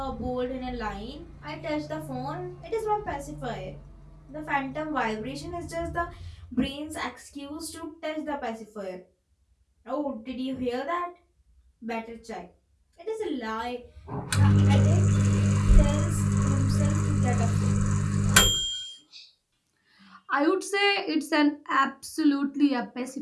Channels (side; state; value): both; identical; correlation 1.00